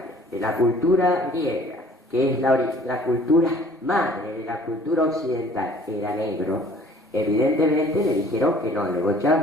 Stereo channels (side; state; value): both; normal; correlation 0.53